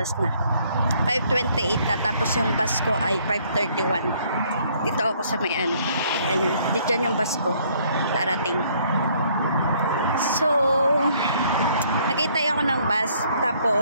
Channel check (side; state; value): both; inverted; correlation -0.64